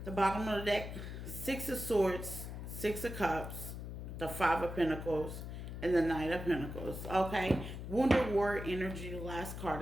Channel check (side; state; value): left; noise; hum, 7 dB below the sound